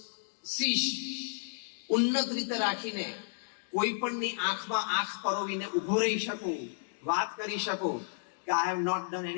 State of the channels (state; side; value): silent; right; digital silence